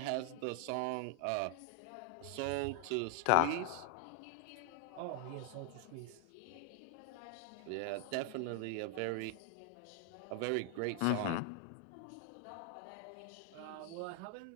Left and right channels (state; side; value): different; both; correlation 0.00